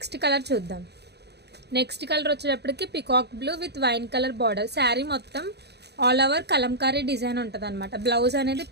కలర్ చూద్దాం. నెక్స్ట్ కలర్ వచ్చేటప్పటికి peacock blue with wine colour border. Sari మొత్తం ఆల్ ఓవర్ కలంకారీ డిజైన్ ఉంటుంది అనమాట. బ్లౌజ్ అనేది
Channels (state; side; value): late; left; 0.48 ms